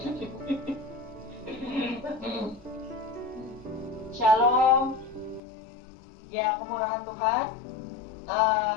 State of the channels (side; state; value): right; drops out; at 5.4 s